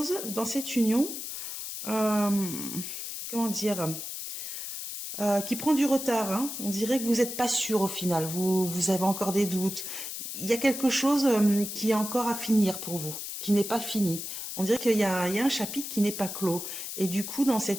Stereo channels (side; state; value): left; noise; hiss, 7 dB below the sound